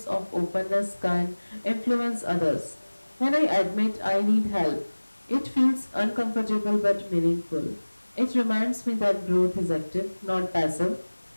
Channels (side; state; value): both; inverted; correlation -1.00